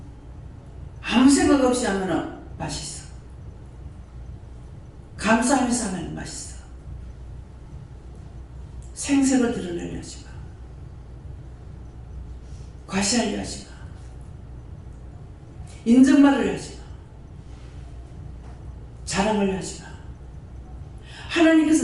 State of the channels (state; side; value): identical; both; correlation 1.00